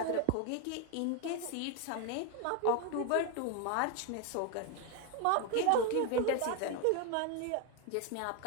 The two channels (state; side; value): different; both; correlation 0.01